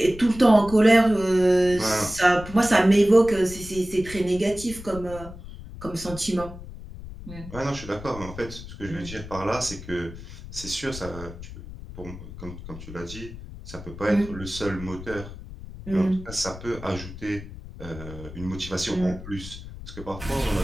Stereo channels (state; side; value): noise; left; rumble, 13 dB below the sound